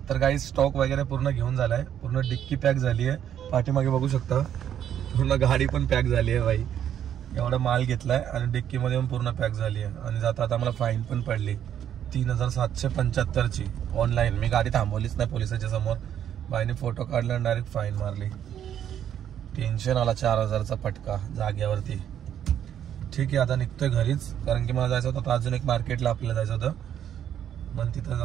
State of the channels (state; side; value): quieter; left; 9.9 dB